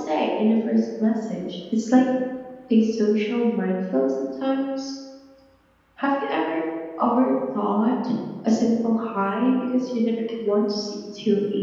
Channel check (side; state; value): both; identical; correlation 1.00